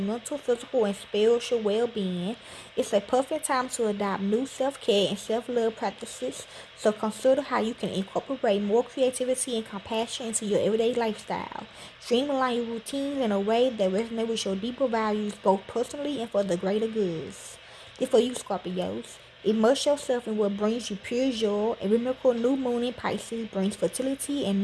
physical, and spiritual well-being. It's a perfect time to adopt new self-care and self-love practices, so consider how you can incorporate more creativity and compassion into your everyday lifestyle. Streamline your routines in a way that resonates with your deeper values, both personally and for the greater goods. This for you, Scorpios. Immerse yourself in what brings you pure joy. A rhythmical new moon in Pisces brings fertility and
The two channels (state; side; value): identical; both; correlation 1.00